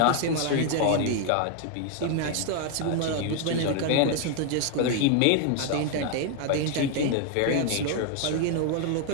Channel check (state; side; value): different; both; correlation 0.00